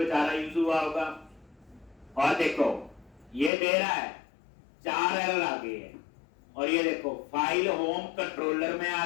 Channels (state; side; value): drops out; right; at 3.5 s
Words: यूज हुआ होगा। और देखो ये दे रहा है 4 एरर आ गए हैं, और ये देखो फाइल होम कंट्रोलर में आ